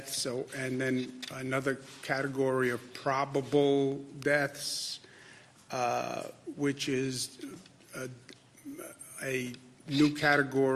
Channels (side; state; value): both; identical; correlation 1.00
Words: and then another category of probable deaths, which is a new